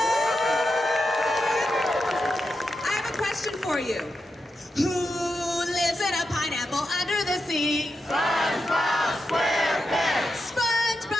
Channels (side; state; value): both; normal; correlation 0.88